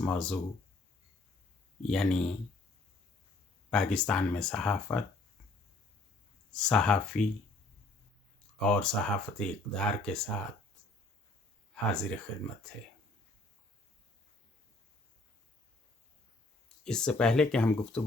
موضوع یعنی پاکستان میں صحافت، صحافی اور صحافتی اقدار کے ساتھ حاضر خدمت ہے۔ اس سے پہلے کہ ہم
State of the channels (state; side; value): quieter; right; 3.0 dB